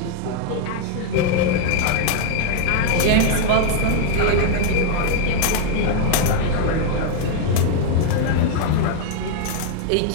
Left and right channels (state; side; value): different; both; correlation 0.00